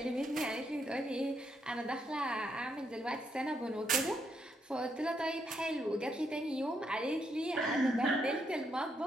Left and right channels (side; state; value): both; normal; correlation 0.77